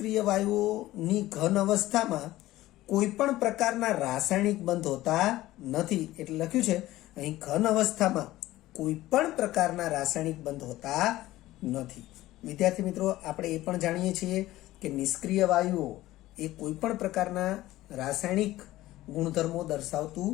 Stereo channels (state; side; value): quieter; right; 16.3 dB